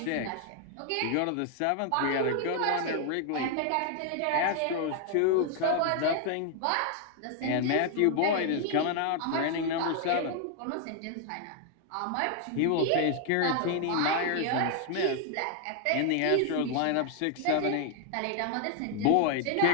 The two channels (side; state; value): both; different; correlation 0.00